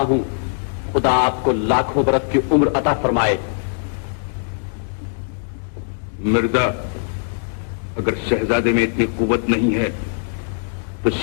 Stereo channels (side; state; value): right; silent; digital silence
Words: हूं, खुदा आपको लाखों बरस की उम्र अता फरमाए। मिर्जा, अगर शहजादे में इतनी कुव्वत नहीं है तो